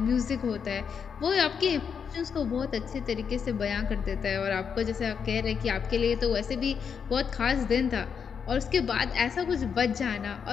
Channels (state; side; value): quieter; right; 6.8 dB